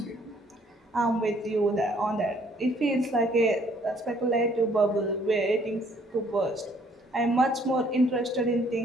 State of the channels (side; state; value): both; normal; correlation 0.63